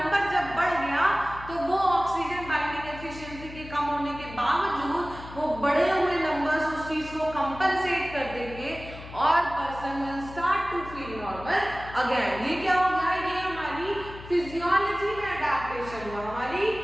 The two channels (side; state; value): left; noise; hum, 14 dB below the sound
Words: जब बढ़ गया तो वो ऑक्सीजन बाइंडिंग एफिशिएंसी के कम होने के बावजूद वो बढ़े हुए नंबर्स उस चीज को कंपनसेट कर देंगे और person will start to feel normal again. ये क्या हो गया, ये हमारी फिजियोलॉजी में अडैप्टेशन हुआ, हमारी